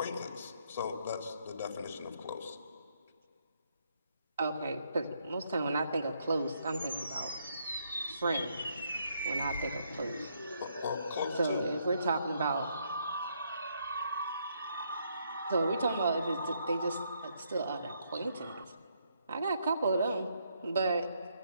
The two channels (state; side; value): inverted; both; correlation -0.74